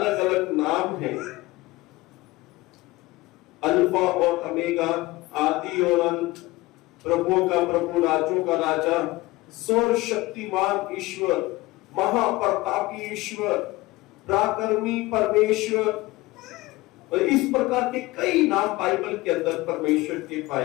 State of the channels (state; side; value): quieter; right; 20.3 dB